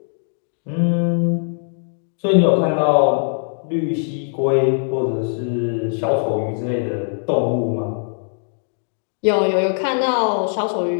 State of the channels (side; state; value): right; silent; digital silence